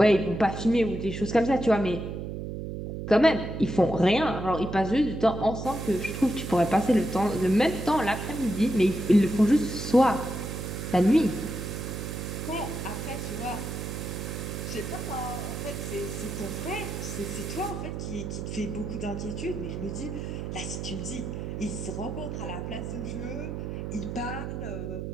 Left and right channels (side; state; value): right; noise; hum, 6 dB below the sound